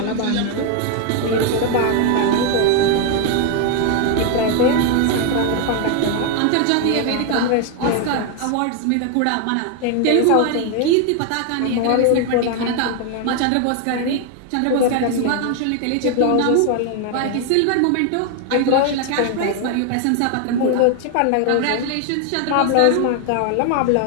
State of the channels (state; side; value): different; both; correlation 0.01